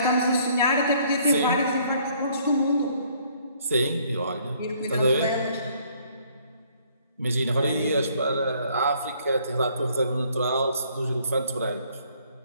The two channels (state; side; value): inverted; both; correlation -0.63